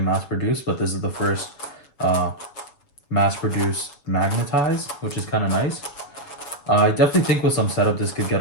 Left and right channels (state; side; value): late; right; 7.1 ms